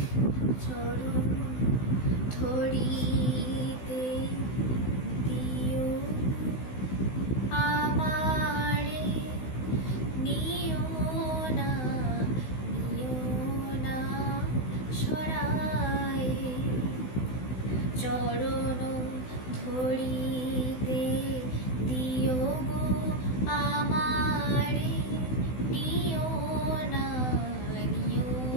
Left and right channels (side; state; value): right; late; 16 ms